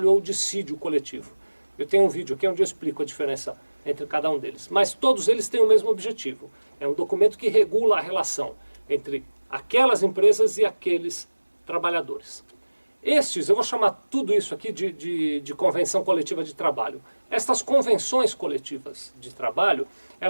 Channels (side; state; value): both; inverted; correlation -1.00